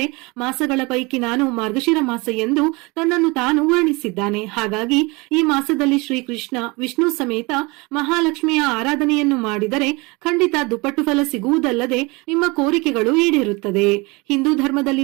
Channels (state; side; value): quieter; left; 25.9 dB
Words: ಮಾಸಗಳ ಪೈಕಿ ನಾನು ಮಾರ್ಗಶಿರ ಮಾಸ ಎಂದು ತನ್ನನ್ನು ತಾನು ವರ್ಣಿಸಿದ್ದಾನೆ. ಹಾಗಾಗಿ ಈ ಮಾಸದಲ್ಲಿ ಶ್ರೀಕೃಷ್ಣ ವಿಷ್ಣು ಸಮೇತ ಮಹಾಲಕ್ಷ್ಮಿಯ ಆರಾಧನೆಯನ್ನು ಮಾಡಿದರೆ ಖಂಡಿತ ದುಪ್ಪಟ್ಟು ಫಲ ಸಿಗುವುದಲ್ಲದೆ ನಿಮ್ಮ ಕೋರಿಕೆಗಳು ಈಡೇರುತ್ತದೆ. ಹಿಂದೂ